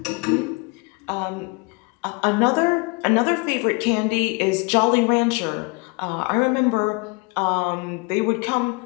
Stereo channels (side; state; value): right; quieter; 29.8 dB